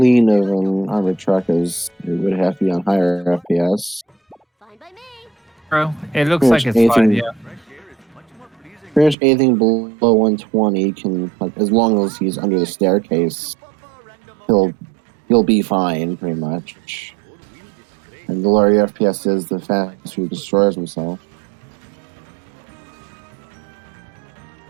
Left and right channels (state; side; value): drops out; left; at 9.2 s